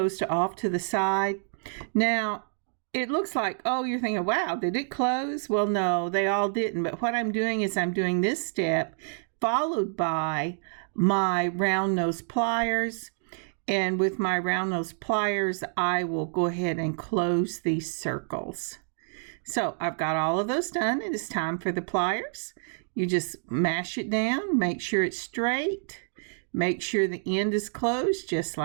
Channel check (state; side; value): silent; left; digital silence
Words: to off to the side. Now, it looks like, oh, you're thinking, wow, did it close? Well, no, they all didn't. But what I'm doing is I'm doing this step followed by my round nose pliers. And with my round nose pliers, I will go ahead and close these circles. So I've got all of those done. It is time for the pliers. You just mash it down, make sure it's straight, make sure the end is closed just